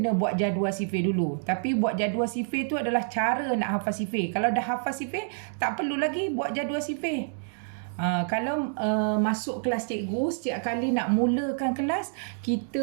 buat jadual sifir dulu. Tapi buat jadual sifir tu adalah cara nak hafal sifir. Kalau dah hafal sifir, tak perlu lagi buat jadual sifir. Kalau masuk kelas cikgu, setiap kali nak mulakan kelas,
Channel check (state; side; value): silent; left; digital silence